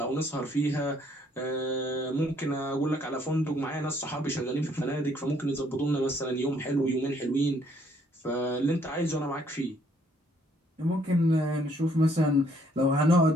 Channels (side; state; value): both; normal; correlation 0.66